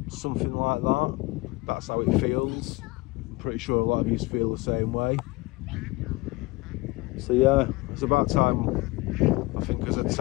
something like that. That's how it feels. I'm pretty sure a lot of you feel the same way. So yeah, it's about time, I think, as a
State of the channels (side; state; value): right; quieter; 22.9 dB